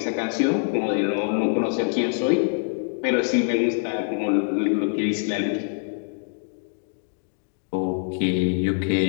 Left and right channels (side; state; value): right; silent; digital silence